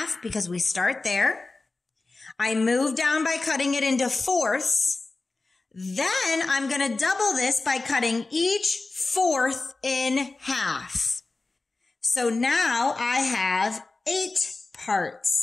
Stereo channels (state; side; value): quieter; right; 3.5 dB